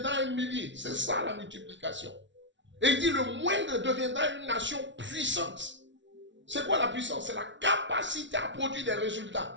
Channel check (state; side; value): late; left; 0.54 ms